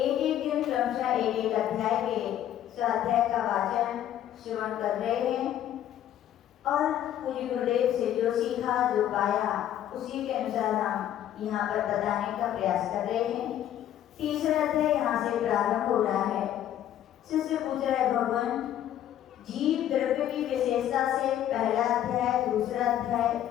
दिन क्रमशः एक अध्याय के स्वाध्याय का वाचन श्रवण कर रहे हैं और पूज्य गुरुदेव से जो सीखा जो पाया उसी के अनुसार हम यहाँ पर बताने का प्रयास कर रहे हैं। तीसरा अध्याय यहाँ से प्रारंभ हो रहा है। शिष्य पूछ रहा है, भगवान जीव द्रव्य की विशेषता से पहला अध्याय दूसरा अध्याय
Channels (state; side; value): quieter; right; 11.3 dB